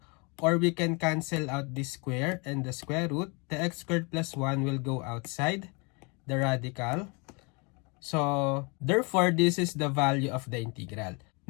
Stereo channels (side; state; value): right; quieter; 31.1 dB